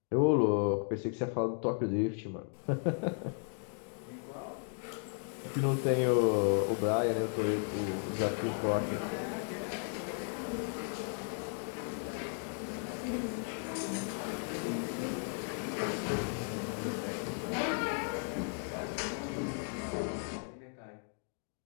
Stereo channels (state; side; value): silent; right; 54 dB below the other